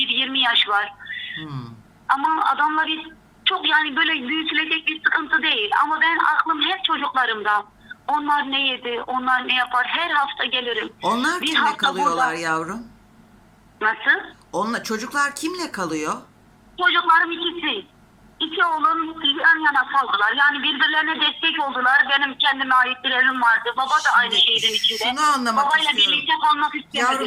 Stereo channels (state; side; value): identical; both; correlation 1.00